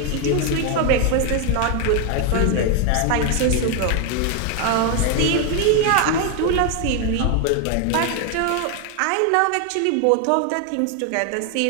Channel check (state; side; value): different; both; correlation 0.01